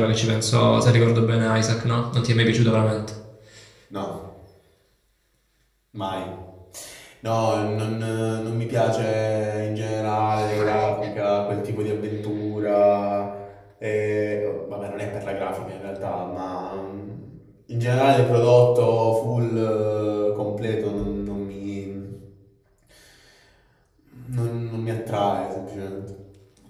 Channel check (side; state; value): both; identical; correlation 1.00